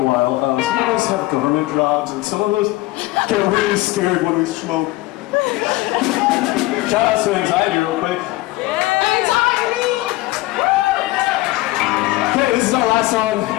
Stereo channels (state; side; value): quieter; right; 18.9 dB